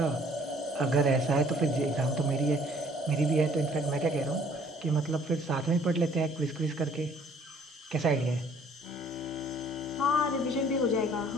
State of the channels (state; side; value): normal; both; correlation 0.58